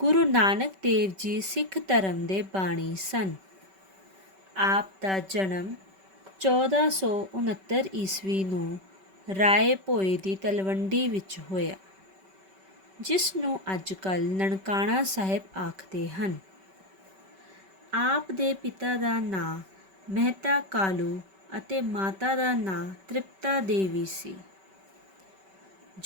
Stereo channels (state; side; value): late; left; 5.2 ms